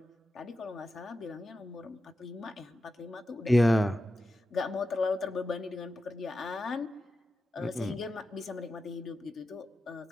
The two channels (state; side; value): normal; both; correlation 0.91